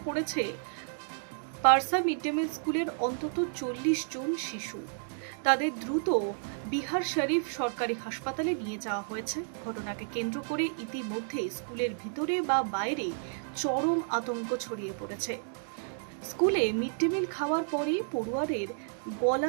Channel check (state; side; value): silent; left; digital silence